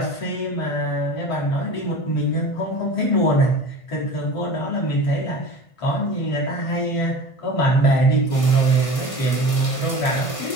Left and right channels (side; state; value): right; late; 1.5 ms